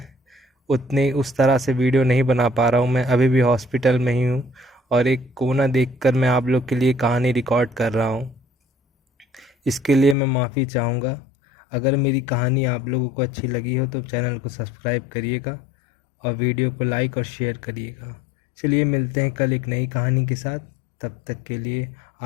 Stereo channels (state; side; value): drops out; right; at 10.2 s